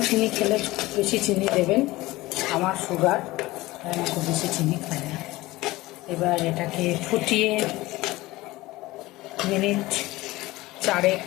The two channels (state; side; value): quieter; right; 19.2 dB